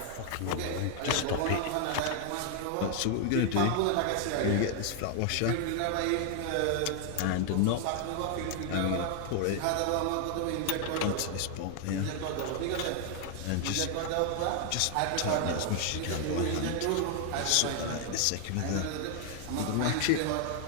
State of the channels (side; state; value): both; different; correlation 0.00